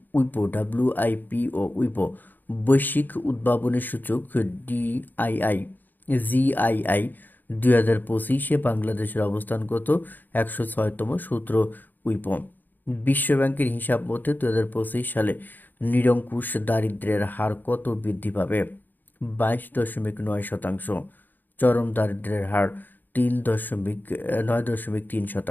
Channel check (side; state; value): right; late; 0.087 ms